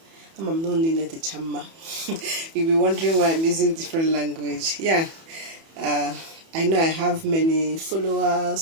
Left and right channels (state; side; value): late; left; 31 ms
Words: I'm not in the chama. You'll be wondering why I'm using different language. Yeah, I know I have many